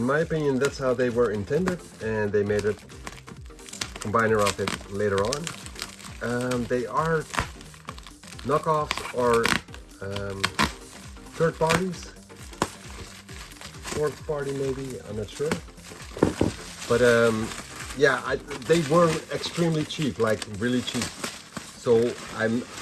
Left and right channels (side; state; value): both; identical; correlation 1.00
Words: my opinion, that's how they were intended, and they made a combiner of it later on. They are knockoffs or third parties, fourth party maybe, I'm not sure. But yeah, they were extremely cheap, like really cheap. So